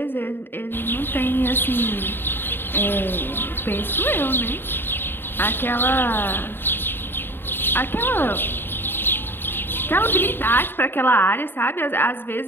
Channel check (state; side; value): late; right; 0.10 ms